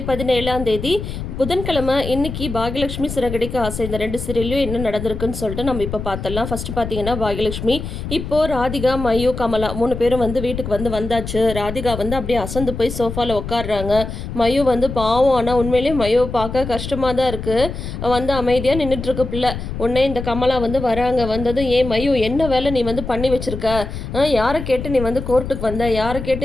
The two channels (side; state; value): left; noise; rumble, 7 dB below the sound